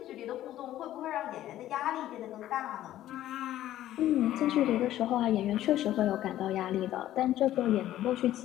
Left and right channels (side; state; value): right; quieter; 13.3 dB